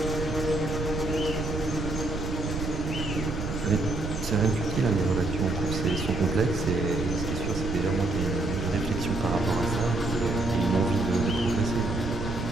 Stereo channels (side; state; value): right; noise; rumble, 5 dB below the sound